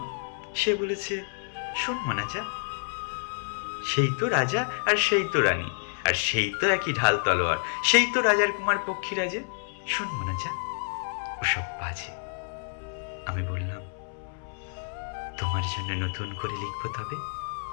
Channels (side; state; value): right; silent; 59 dB below the other